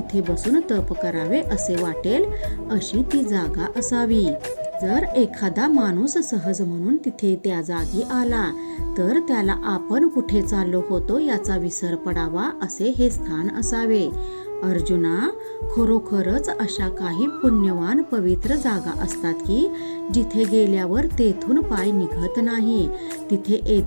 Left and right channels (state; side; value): inverted; both; correlation -1.00